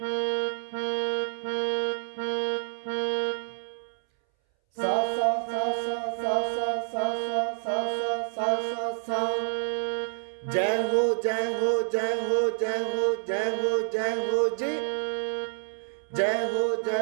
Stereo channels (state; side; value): silent; left; 59 dB below the other